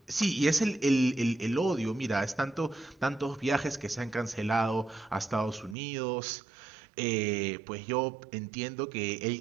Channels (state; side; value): drops out; left; at 5.8 s